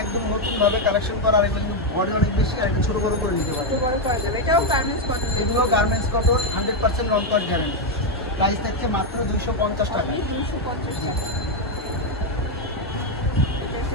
একদম নতুন ভাবে কালেকশন করা। আর এগুলো কিন্তু বডি অনেক বেশি, আর একটু ছোট বড় করে নিতে পারে। ছোট বড় করা যাবে, এটাও গার্মেন্টস কটন। এগুলো গার্মেন্টস কটন, 100% রং কস গ্যারান্টি। প্রাইস থাকছে মাত্র 250 টাকা। 250 টাকা। এটা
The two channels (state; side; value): normal; both; correlation 0.03